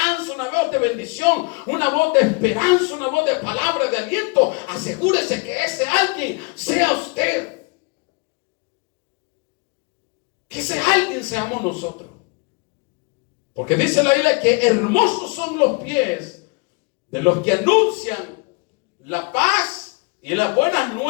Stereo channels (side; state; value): right; quieter; 29.4 dB